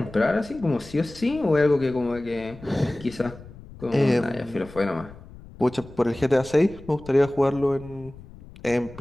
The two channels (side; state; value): left; noise; rumble, 19 dB below the sound